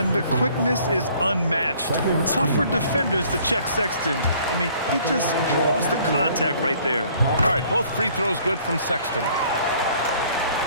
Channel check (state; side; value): inverted; both; correlation -0.58